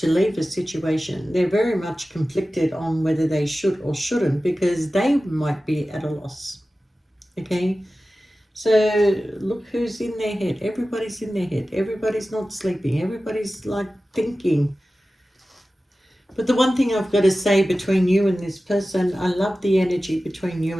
leave a situation, they're very much conflicted on whether they should or shouldn't, because they might be at a loss, okay? So look who's in their head. Everybody's in their head. Everybody's not sleeping. Everybody's like thinking. But the one thing I've got to say between you and this person, I love the energy between you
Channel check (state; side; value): normal; both; correlation 0.95